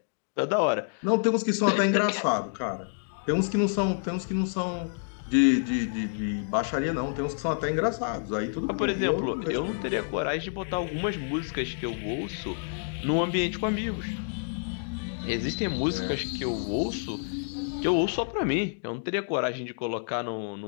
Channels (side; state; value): right; silent; digital silence